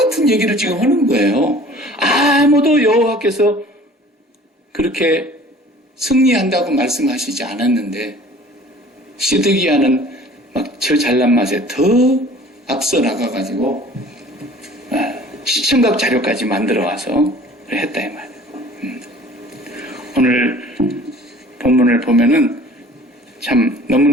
얘기를 지금 하는 거예요. 아무도 여호와께서 그렇게 승리한다고 말씀하시지 않았는데 시드기야는 막 저 잘난 맛에 더 앞서 나가가지고 시청각 자료까지 만들어 와서 했다 이 말이에요. 오늘 본문을 보면은 참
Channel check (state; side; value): normal; both; correlation 0.48